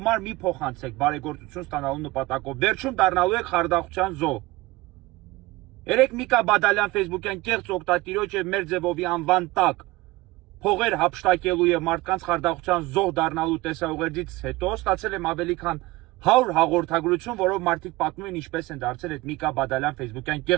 մի փոխանցեք բարեգործություն ստանալու նպատակով, վերջում դառնալու եք խարդախության զոհ։ Երեք Միկա Բադալյան ֆեյսբուքյան կեղծ օգտատիրոջ եւ Մերձևովի անվան տակ փողեր հափշտակելու եւ մարդկանց խարդախության զոհ դառնալու տեսաուղերձից հետո ստացել եմ ավելի քան 100 հաղորդագրություն, որով մարդիկ պատմում են ինչպես են դարձել այդ Միկա Բադալյան ֆեյսբուքյան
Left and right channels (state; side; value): quieter; left; 20.1 dB